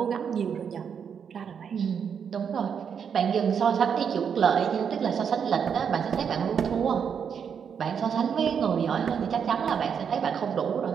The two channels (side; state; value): left; quieter; 7.2 dB